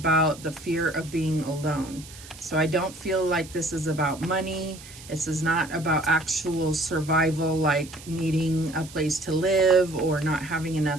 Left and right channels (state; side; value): noise; right; hiss, 18 dB below the sound